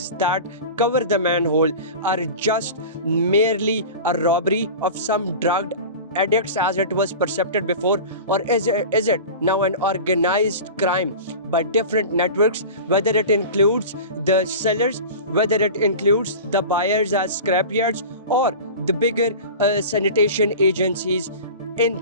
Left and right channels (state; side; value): inverted; both; correlation -0.33